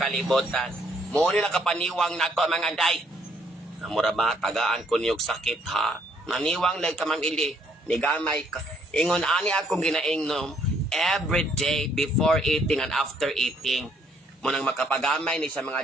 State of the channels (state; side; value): normal; both; correlation 0.67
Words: Muna na kapaniwang na to, mga day. Namura ba, tagaan ko niyog sakit, ha? Naniwang lang ka, Ma'am Ili. Nigamay ka. Ingon, ani akong ginaingnom every day before eating and after eating. Munang makapagamay ni sa mga